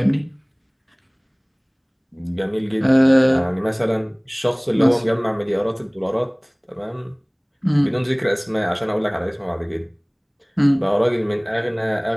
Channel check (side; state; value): both; identical; correlation 1.00